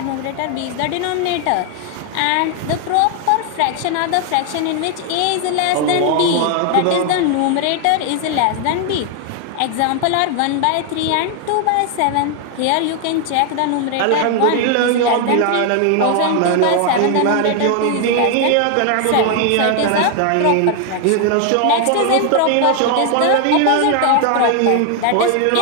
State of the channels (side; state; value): both; different; correlation 0.00